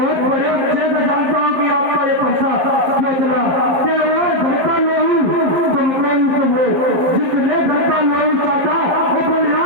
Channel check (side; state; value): left; late; 12 ms